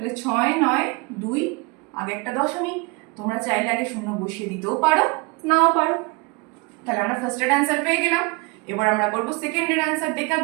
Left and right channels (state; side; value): quieter; left; 27.5 dB